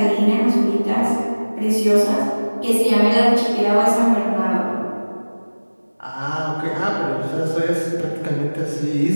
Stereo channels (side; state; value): both; inverted; correlation -1.00